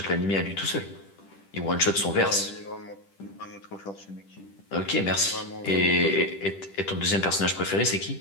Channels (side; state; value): right; late; 10 ms